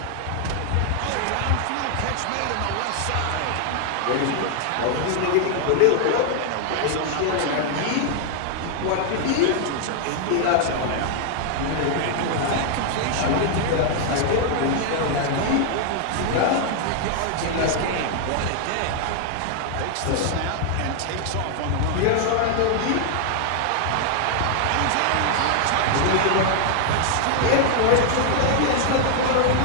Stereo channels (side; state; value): both; different; correlation 0.00